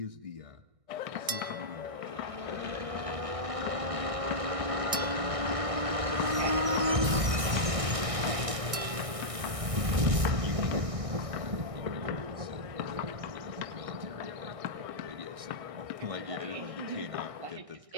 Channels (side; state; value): left; late; 1.6 ms